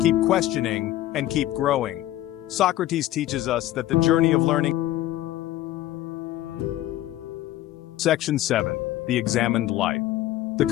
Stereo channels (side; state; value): right; quieter; 14.2 dB